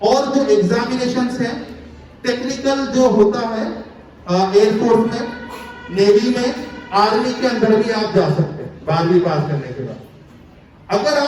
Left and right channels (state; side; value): identical; both; correlation 1.00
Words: और जो एग्जामिनेशंस हैं टेक्निकल जो होता है एयरफोर्स में, नेवी में, आर्मी के अंदर भी आप जा सकते हैं 12वीं पास करने के बाद। अगर